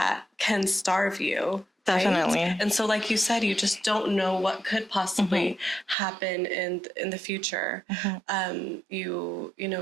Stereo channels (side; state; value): left; drops out; at 6.0 s